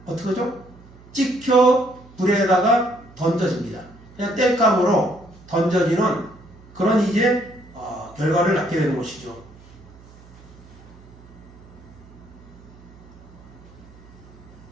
어떻게 하죠? 찍혀 불에다가 던져집니다. 그냥 땔감으로 던져지는 그런 결과를 낳게 되는 것이죠.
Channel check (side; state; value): right; noise; hum, 23 dB below the sound